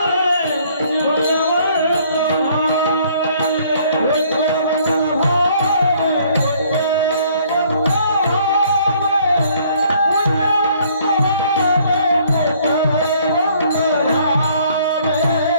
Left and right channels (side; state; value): both; inverted; correlation -0.61